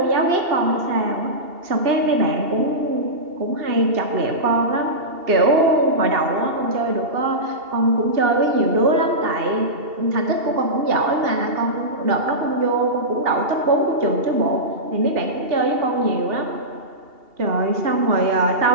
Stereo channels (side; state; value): left; late; 2.8 ms